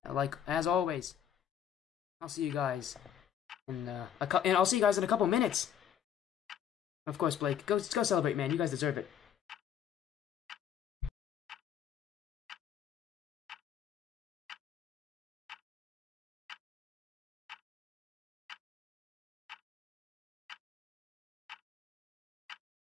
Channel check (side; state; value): right; quieter; 9.2 dB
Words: like as always. I'll see you guys in I'll see you guys in a couple minutes. Of course, Blake, go celebrate, man. You guys deserve it.